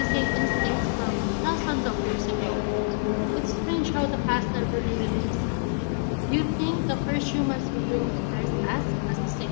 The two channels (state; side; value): silent; right; digital silence